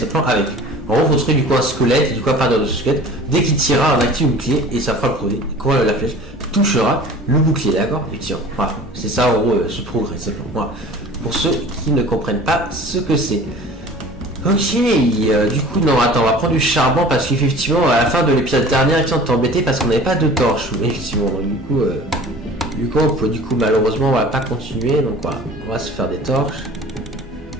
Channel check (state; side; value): normal; both; correlation 0.43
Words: avec. En gros, vous trouver du coup un squelette, et du coup à partir de ce squelette, dès qu'il tirera un actif bouclier, et ça fera le progrès. Quand la flèche touchera le bouclier, d'accord? Et tiens, voilà, c'est ça en gros ce progrès, simplement. Voilà. Pour ceux qui ne comprennent pas ce que c'est. Ok, du coup, non, attends, on va prendre du charbon parce qu'effectivement, à la fin de l'épisode dernier, on t'est embêté parce qu'on n'avait pas de torche, effectivement. Donc, du coup, malheureusement, on va pas continuer, donc voilà, on va se faire des torches.